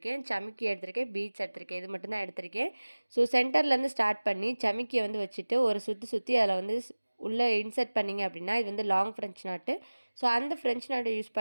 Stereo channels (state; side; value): inverted; both; correlation -1.00